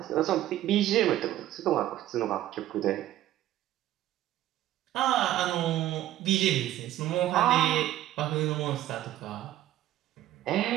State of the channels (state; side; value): quieter; left; 13.7 dB